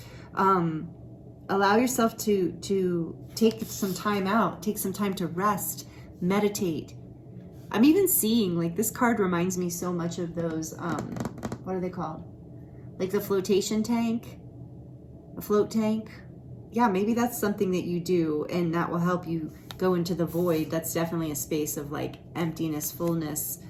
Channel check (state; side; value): identical; both; correlation 1.00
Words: allow yourself to take some time out, take some time to rest, meditate. I'm even seeing, like, this card reminds me so much of those, what are they called? Like the flotation tank, a float tank. Yeah, maybe that's something that you do and that will help you go into the void. That's definitely a space of like emptiness, fullness.